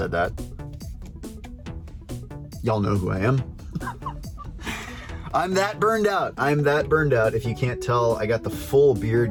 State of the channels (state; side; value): identical; both; correlation 1.00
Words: that. Y'all know who I am. I'm that burned out. If you can't tell, I got the full